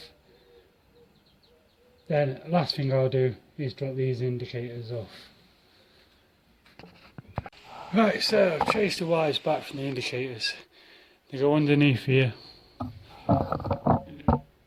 Then last thing I'll do is drop these indicators off. Right, so I've traced the wires back from the indicators. They go underneath here, all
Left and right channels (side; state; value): both; identical; correlation 1.00